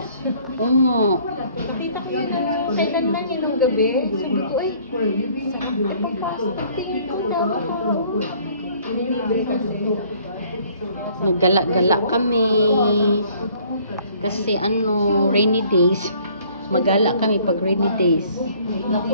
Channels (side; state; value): both; inverted; correlation -0.58